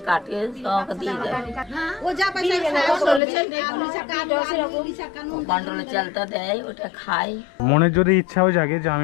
কাটে সব দিয়ে দেয়, ও যা পয়সা কন্ট্রোলে চালটা দেয়, ওটা খায়। মনের যদি ইচ্ছাও জাগে যে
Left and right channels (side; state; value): right; drops out; at 3.2 s